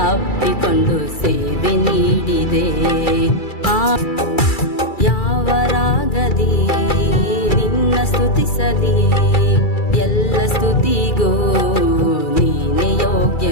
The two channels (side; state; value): right; late; 2.3 ms